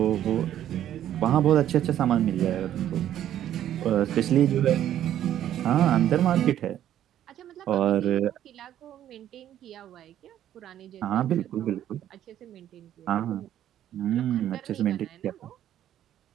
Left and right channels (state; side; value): quieter; left; 11.4 dB